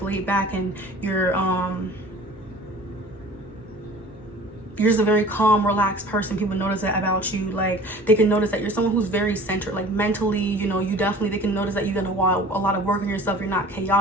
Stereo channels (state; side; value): normal; both; correlation 0.45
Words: laid back, and you're you're just a very calm, relaxed person. People notice that about you. Like, they can notice that you're someone who's very centered, like mentally, you know, they can notice that you're gonna want a lot of work on yourself. You're not